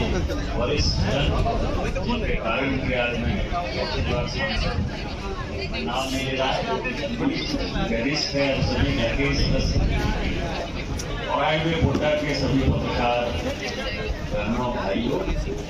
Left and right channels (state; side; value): identical; both; correlation 1.00